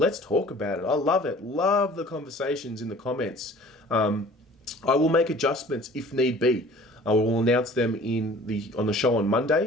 talk about it. I love it. Love the conversations in the comments. I will make adjustments if need be. I will announce them on the show on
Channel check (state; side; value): normal; both; correlation 0.48